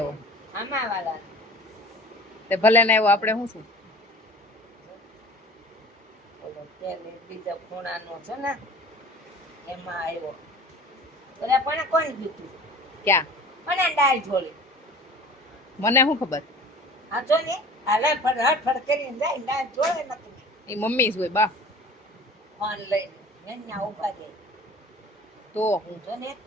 આમાં વાળા તે ભલે ને આવ્યો આપણે શું ઓલો તેલ બીજો ખૂણાનો છે ને એમાં આવ્યો ઓલા પણ કોણ દીધું ક્યાં પણ ડાળ ઝોલી મને શું ખબર આ જો ને હાલ હડફડ કરીને જાય ડાળ ઝોલે નથી એ મમ્મી જ હોય બા ફોન લઈને એના ઉભા દે તો હું જો ને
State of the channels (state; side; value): normal; both; correlation 0.42